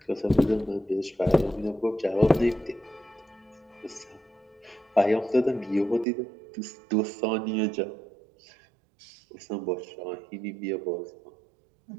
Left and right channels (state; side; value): drops out; left; at 6.1 s